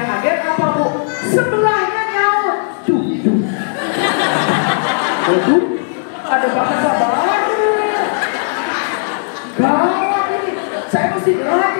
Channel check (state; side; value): silent; right; 69 dB below the other